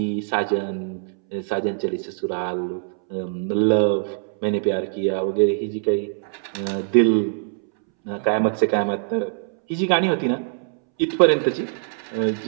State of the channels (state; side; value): silent; left; 64 dB below the other